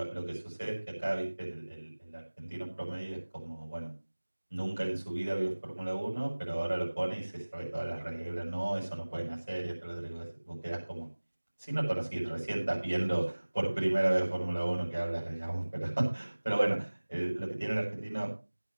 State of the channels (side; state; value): both; inverted; correlation -1.00